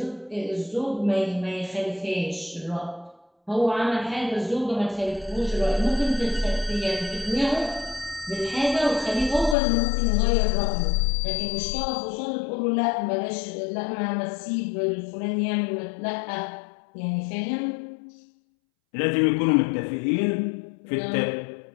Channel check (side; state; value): right; drops out; at 9.6 s